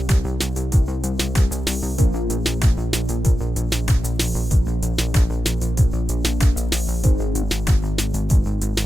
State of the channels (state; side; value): normal; both; correlation 0.92